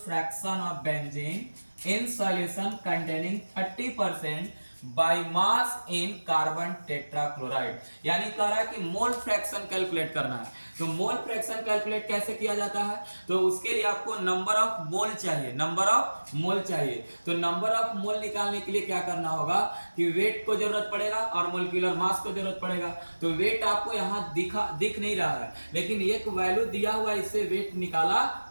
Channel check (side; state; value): both; inverted; correlation -1.00